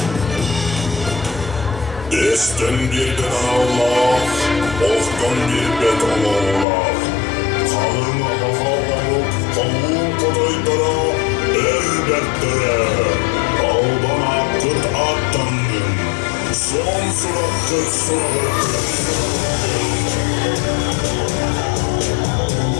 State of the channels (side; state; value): right; drops out; at 6.7 s